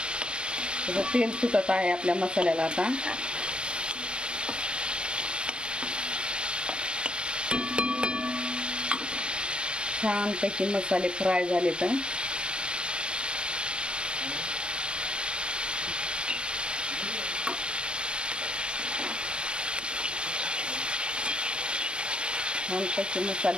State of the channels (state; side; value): late; left; 0.052 ms